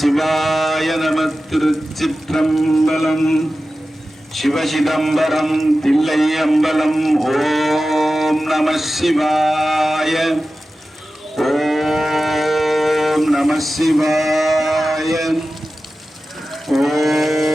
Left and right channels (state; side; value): normal; both; correlation 0.94